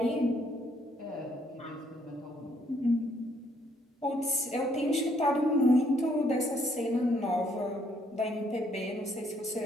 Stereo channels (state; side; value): normal; both; correlation 0.68